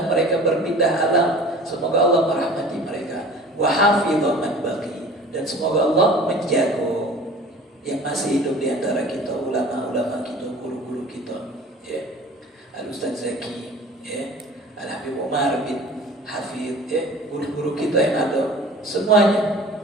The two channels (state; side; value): normal; both; correlation 0.44